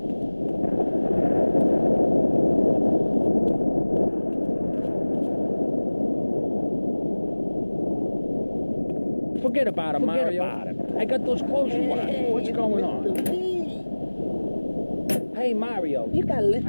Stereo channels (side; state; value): both; inverted; correlation -1.00